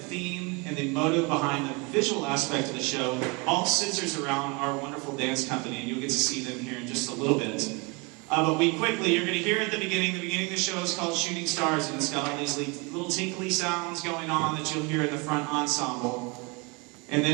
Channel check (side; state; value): left; quieter; 29.0 dB